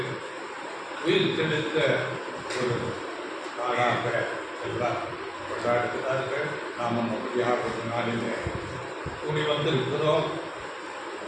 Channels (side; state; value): both; identical; correlation 1.00